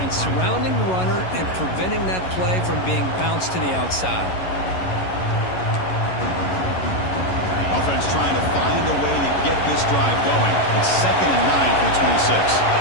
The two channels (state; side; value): late; right; 11 ms